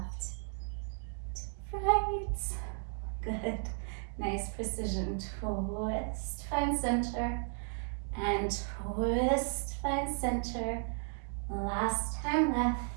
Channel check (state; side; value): silent; left; 55 dB below the other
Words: to right. Good. Nice precision. Twist, find center, and twist, find center. Last time left,